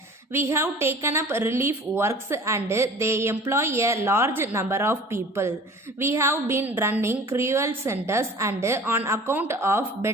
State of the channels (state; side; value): normal; both; correlation 0.44